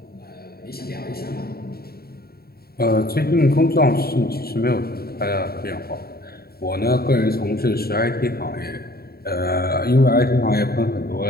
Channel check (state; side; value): late; right; 0.45 ms